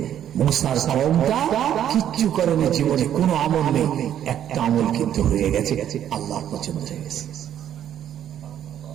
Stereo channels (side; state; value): left; quieter; 10.4 dB